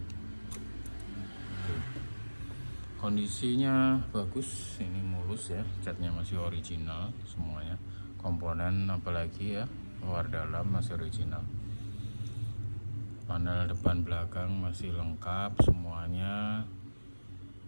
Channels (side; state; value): both; inverted; correlation -1.00